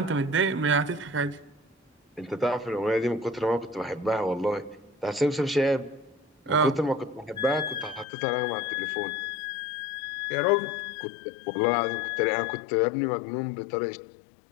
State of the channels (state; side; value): drops out; right; at 8.1 s